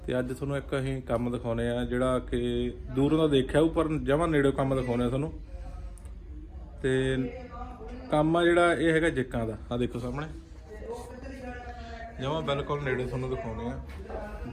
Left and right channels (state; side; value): identical; both; correlation 1.00